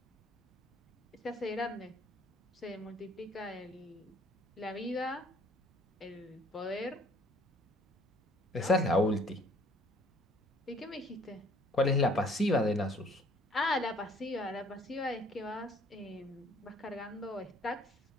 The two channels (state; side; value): normal; both; correlation 0.58